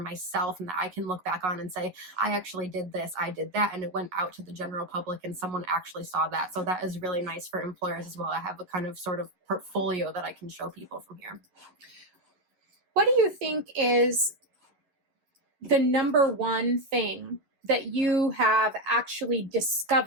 and that I can look back on and say, I actually did this, I did that, and it went out to the general public and someone actually saw that. So that is really nice for employers as well. I have a kind of sort of portfolio that I can show people from here. What do you think is the number one thing that you have actually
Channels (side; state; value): left; late; 11 ms